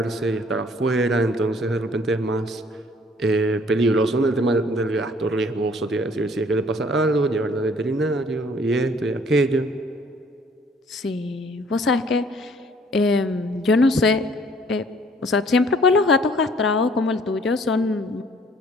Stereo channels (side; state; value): both; normal; correlation 0.58